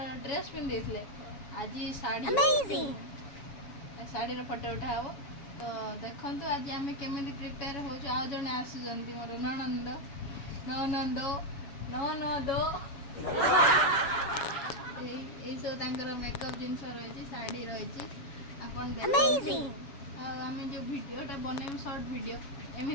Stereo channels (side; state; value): right; late; 7.3 ms